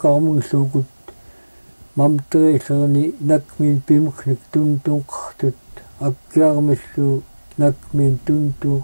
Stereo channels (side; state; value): both; inverted; correlation -1.00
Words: mamteriillerni nakmin pimuknik tuntunqartut akkiarmillu nakmin